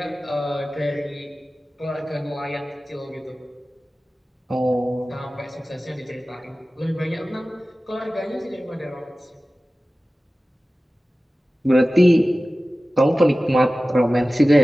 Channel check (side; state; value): both; normal; correlation 0.96